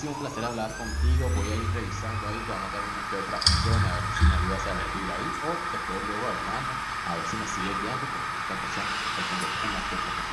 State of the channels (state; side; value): identical; both; correlation 1.00